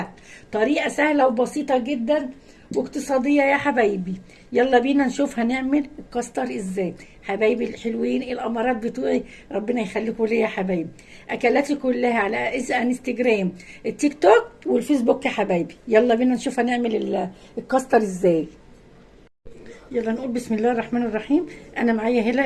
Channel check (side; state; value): both; identical; correlation 1.00